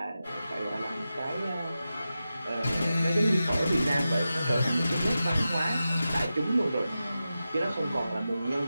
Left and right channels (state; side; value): inverted; both; correlation -0.92